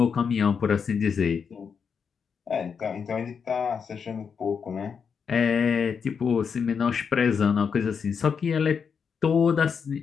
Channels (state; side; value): quieter; right; 6.4 dB